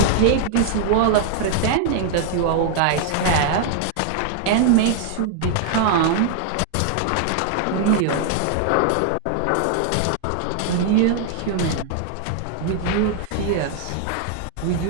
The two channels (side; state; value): both; different; correlation 0.00